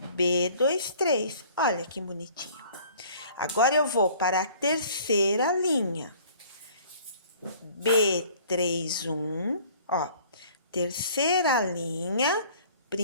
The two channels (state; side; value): inverted; both; correlation -0.53